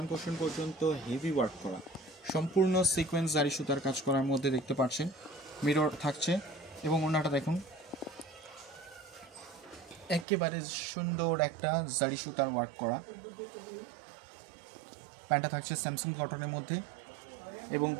কোশন পর্যন্ত হেভি ওয়ার্ক করা, সম্পূর্ণ সিকোয়েন্স জারি সুতার কাজ করার মধ্যে দেখতে পাচ্ছেন মিরর থাকছে। এবং ওনাটা দেখুন, একেবারে সুন্দর একটা জারি সুতার ওয়ার্ক করা। প্যান্টটা থাকছে স্যামসাং কটনের মধ্যে এবং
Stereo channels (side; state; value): left; drops out; at 10.2 s